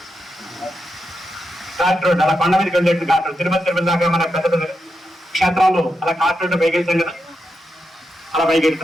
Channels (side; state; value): both; normal; correlation 0.86